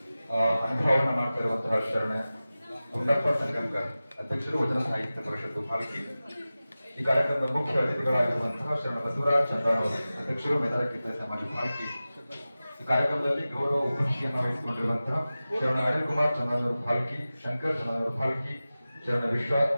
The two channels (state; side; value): inverted; both; correlation -0.96